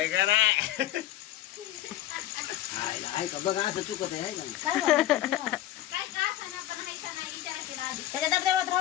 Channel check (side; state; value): right; quieter; 13.7 dB